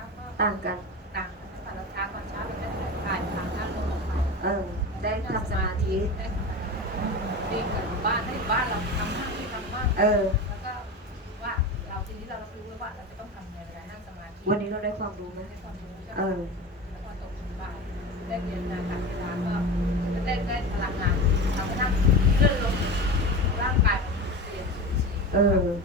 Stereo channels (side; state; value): both; normal; correlation 0.28